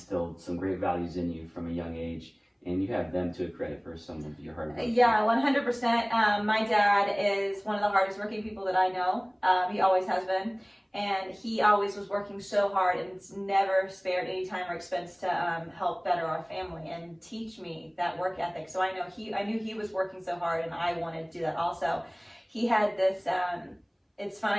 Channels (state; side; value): identical; both; correlation 1.00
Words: some great values in you from a young age, and you have them to credit for some of your hard work. Yeah, 100%. My dad is one of the hardest working people that I know. He always has been. And he always was working so hard and never spared any time or expense to help better our family and teach me that work ethic. So I knew he was working so hard, and I wanted to do that also. He had this, it's